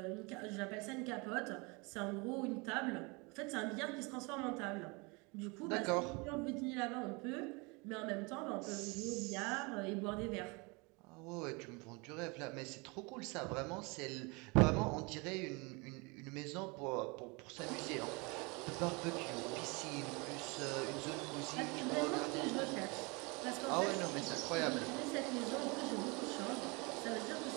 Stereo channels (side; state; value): left; quieter; 28.5 dB